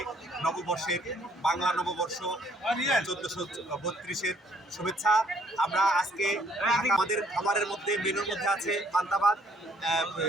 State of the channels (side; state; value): both; normal; correlation 0.64